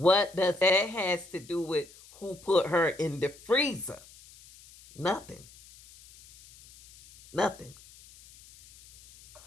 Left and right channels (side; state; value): left; noise; hiss, 23 dB below the sound